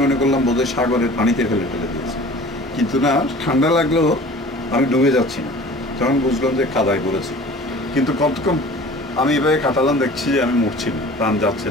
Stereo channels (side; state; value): both; normal; correlation 0.44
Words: মনে করলাম বোধহয় সাগরের পানিতে ফেলে দিয়েছে, কিন্তু না, ঠান্ডা লাগলেও আমি ডুবে যাচ্ছি না। তখন বুঝলাম যে কাদায় পড়েছি। কিন্তু কতক্ষণ আমি এভাবে কাটালাম, দেখছি যে আমি মরছি না, প্রাণ যাচ্ছে